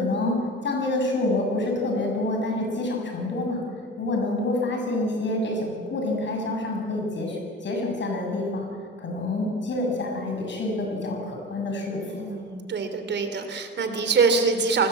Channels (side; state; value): both; normal; correlation 0.31